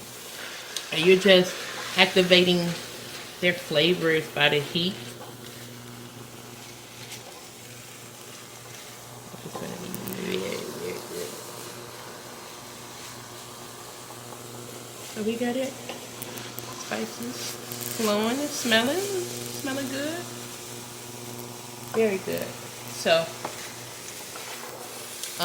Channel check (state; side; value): identical; both; correlation 1.00